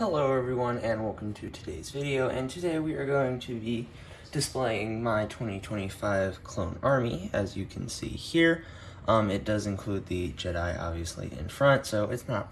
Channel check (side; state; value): both; identical; correlation 1.00